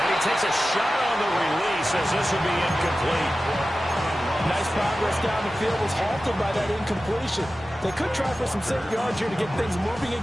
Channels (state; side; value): normal; both; correlation 0.94